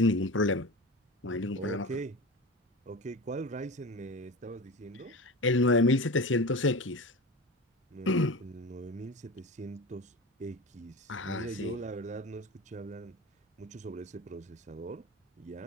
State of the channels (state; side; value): normal; both; correlation 0.29